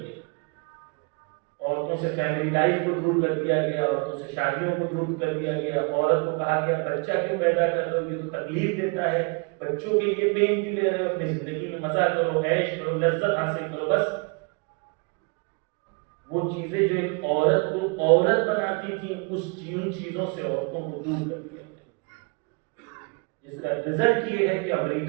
عورتوں سے فیملی لائف کو دور کر دیا گیا, عورتوں سے شادیوں کو دور کر دیا گیا. عورت کو کہا گیا بچہ کیوں پیدا کر لو, یہ تو تکلیف دیتا ہے, بچوں کے لیے پین کیوں لے رہے ہو, اپنی زندگی میں مزہ کرو, عیش کرو, لذت حاصل کرو. بس وہ چیزیں جو ایک عورت کو عورت بناتی تھی ان چیزوں سے عورتوں کو دور کر دیا گیا, جس کا رزلٹ یہ ہے کہ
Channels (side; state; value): left; quieter; 33.1 dB